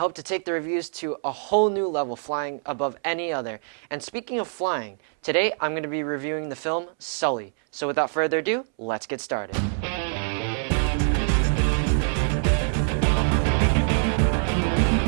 to take the reviews to a whole new level, flying above any other. And speaking of flying, today I'm going to be reviewing the film Sully. So without further ado, let's get started.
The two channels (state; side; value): silent; left; 62 dB below the other